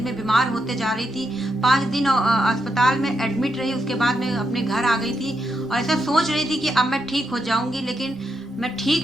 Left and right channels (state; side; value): normal; both; correlation 0.82